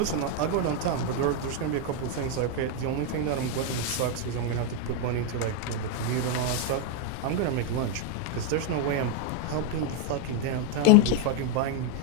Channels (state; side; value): different; both; correlation 0.01